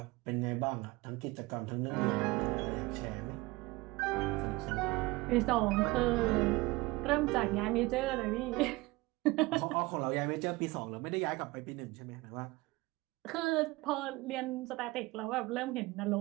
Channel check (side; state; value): left; quieter; 21.8 dB